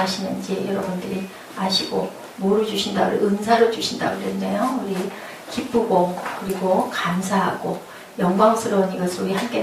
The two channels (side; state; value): both; identical; correlation 1.00